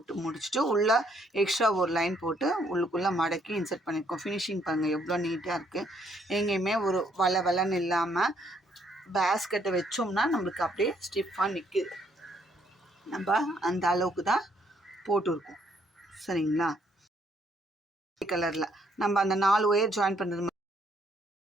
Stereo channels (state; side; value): normal; both; correlation 0.69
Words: முடிச்சுட்டு உள்ளே எக்ஸ்ட்ரா ஒரு லைன் போட்டு உள்ளுக்குள்ளே மடக்கி இன்சர்ட் பண்ணியிருக்கோம். ஃபினிஷிங் பாருங்கள் எவ்வளோ நீட்டாக இருக்குது. எங்கேயுமே ஒரு வளன்னு இல்லாமல் பேஸ்கெட்டை வச்சோம்னா நம்மளுக்கு அப்படியே ஸ்டிஃபாக நிற்குது. நம்ம அந்த அளவுக்கு தான் போட்டிருக்கோம். சரிங்களா? கலரில் நம்ம அந்த 4 ஒயர் ஜாயின் பண்ணுறது